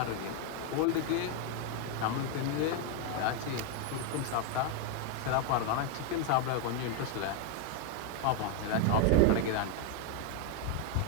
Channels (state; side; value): different; both; correlation 0.01